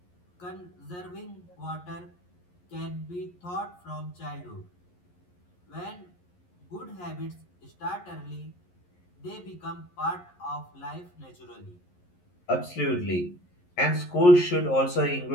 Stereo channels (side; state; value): right; late; 11 ms